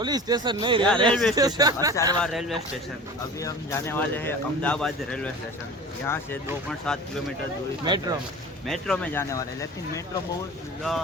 station नहीं, railway station. Asarwa railway station. अभी हम जाने वाले हैं अहमदाबाद रेलवे स्टेशन। यहाँ से 2.7 किलोमीटर दूरी मेट्रो में जाने वाले हैं, लेकिन मेट्रो बहुत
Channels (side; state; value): both; normal; correlation 0.38